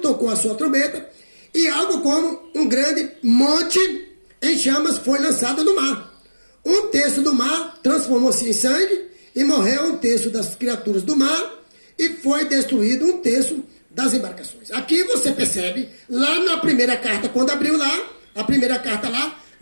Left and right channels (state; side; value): inverted; both; correlation -1.00